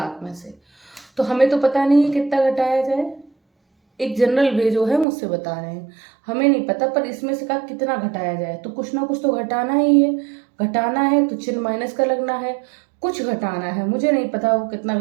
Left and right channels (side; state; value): left; drops out; at 5.1 s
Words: में से। तो हमें तो पता नहीं है कितना घटाया जाए, एक जनरल वे जो है मुझसे बता रहे हैं, हमें नहीं पता। पर इसमें से कहा कितना घटाया जाए तो कुछ ना कुछ तो घटाना ही है। घटाना है तो चिन्ह माइनस का लगना है, कुछ घटाना है। मुझे नहीं पता वो कितना